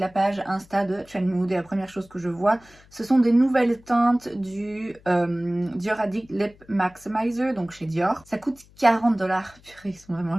page Insta de Trendmood. Et la première chose que je vois, ce sont des nouvelles teintes du Dior Addict Lip Maximizer, donc chez Dior. Ça coûte 40$. Purée, ils sont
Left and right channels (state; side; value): noise; left; hum, 27 dB below the sound